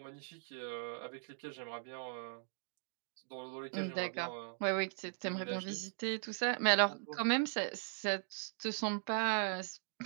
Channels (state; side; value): silent; left; digital silence